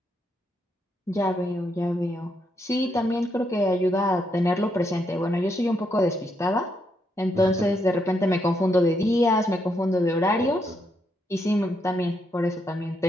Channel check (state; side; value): normal; both; correlation 0.78